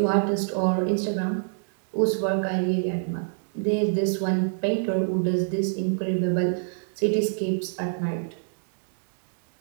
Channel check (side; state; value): left; silent; digital silence